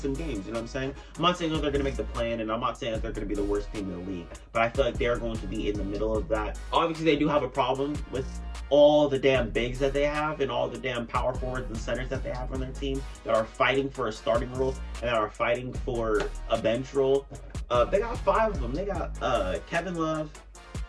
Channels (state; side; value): identical; both; correlation 1.00